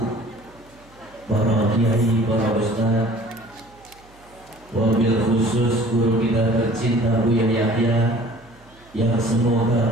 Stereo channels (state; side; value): noise; right; hum, 27 dB below the sound